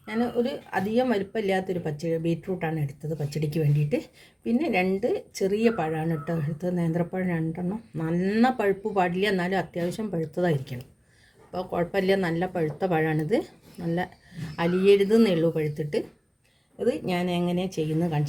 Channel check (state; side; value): identical; both; correlation 1.00